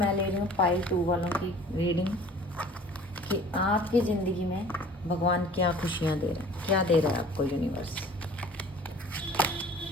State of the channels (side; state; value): both; normal; correlation 0.48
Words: ले रही हूँ पाइल 2 वालों की रीडिंग कि आपकी ज़िंदगी में भगवान क्या खुशियाँ दे रहे हैं, क्या दे रहा है आपको यूनिवर्स।